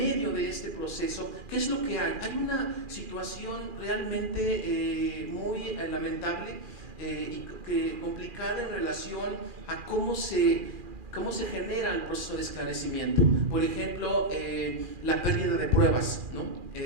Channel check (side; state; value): left; late; 2.4 ms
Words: de este proceso, ¿qué es lo que hay? Hay una situación realmente muy lamentable y complicada en relación a cómo se genera el proceso de esclarecimiento. Por ejemplo, la pérdida de pruebas, ¿no?